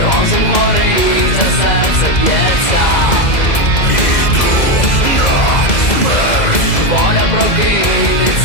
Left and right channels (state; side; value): late; right; 2.0 ms